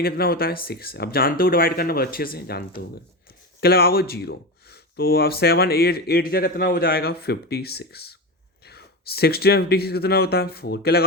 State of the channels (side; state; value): both; normal; correlation 0.20